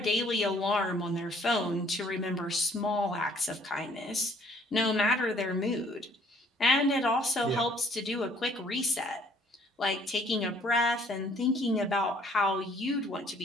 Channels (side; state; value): both; normal; correlation 0.60